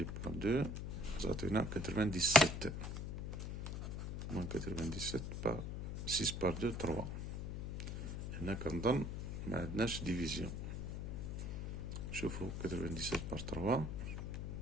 par 2, on s'atteint à 97, moins 97 par 6 par 2, 3. Et là, quand on ما عندناش ديفيزيون. شوفوا 97 par 3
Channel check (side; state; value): left; noise; hum, 4 dB below the sound